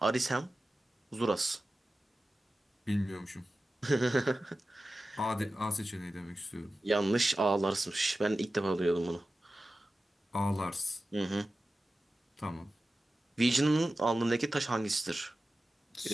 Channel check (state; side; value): normal; both; correlation 0.94